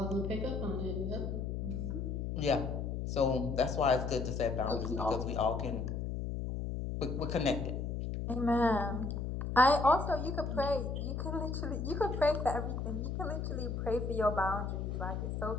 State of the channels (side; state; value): left; noise; hum, 3 dB below the sound